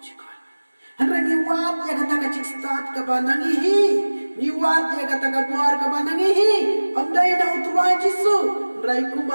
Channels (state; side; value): inverted; both; correlation -1.00